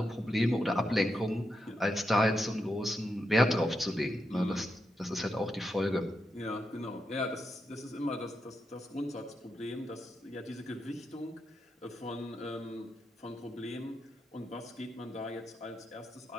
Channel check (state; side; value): normal; both; correlation 0.85